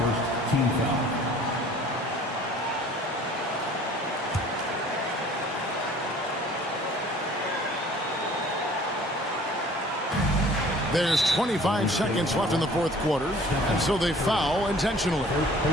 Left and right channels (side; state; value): both; normal; correlation 0.50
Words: team foul. There's 25 seconds left in the fourth quarter, and so they foul intentionally. First